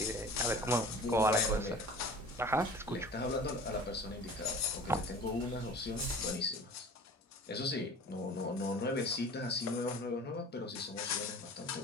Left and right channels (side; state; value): both; normal; correlation 0.42